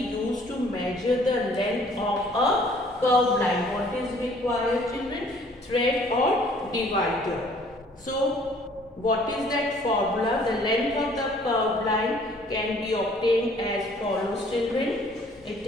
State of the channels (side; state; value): both; normal; correlation 0.57